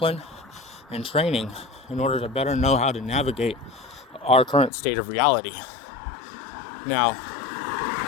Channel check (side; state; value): right; drops out; at 4.7 s